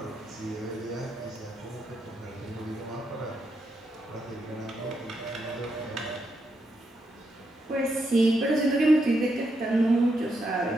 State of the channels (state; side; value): normal; both; correlation 0.81